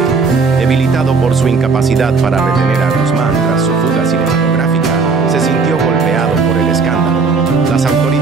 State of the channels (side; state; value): left; quieter; 4.6 dB